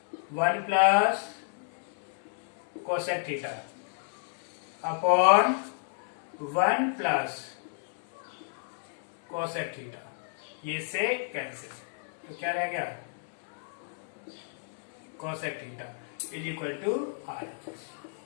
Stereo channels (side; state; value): right; silent; 57 dB below the other